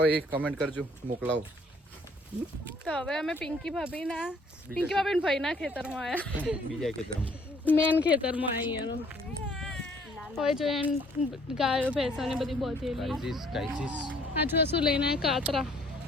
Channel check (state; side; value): normal; both; correlation 0.61